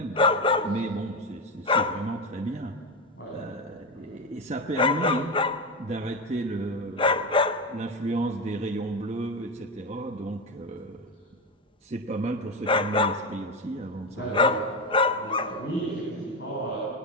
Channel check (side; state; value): both; normal; correlation 0.13